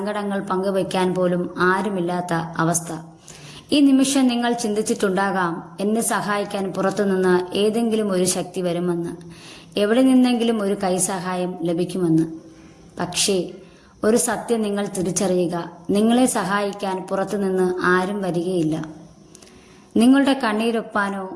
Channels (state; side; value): identical; both; correlation 1.00